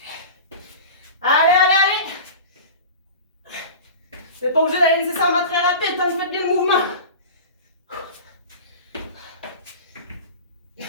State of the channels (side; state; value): both; inverted; correlation -0.34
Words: Allez. Vous n'êtes pas obligé d'aller nécessairement très rapide tant que vous faites bien le mouvement.